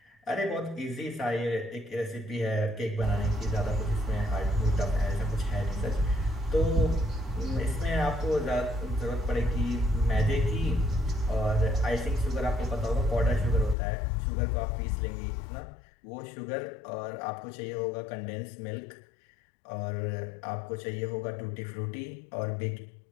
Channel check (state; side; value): drops out; right; at 13.8 s